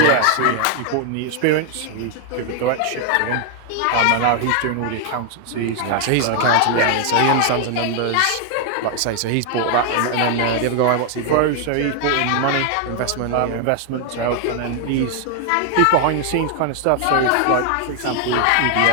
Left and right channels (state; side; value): different; both; correlation 0.00